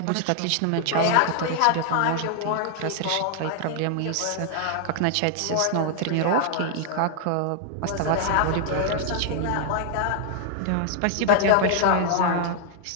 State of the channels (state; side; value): different; both; correlation 0.00